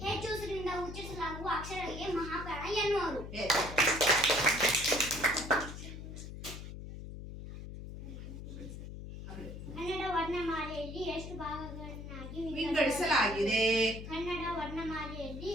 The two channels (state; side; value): noise; left; hum, 10 dB below the sound